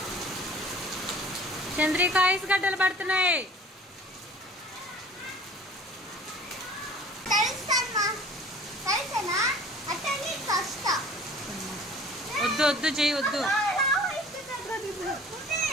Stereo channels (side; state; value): both; normal; correlation 0.47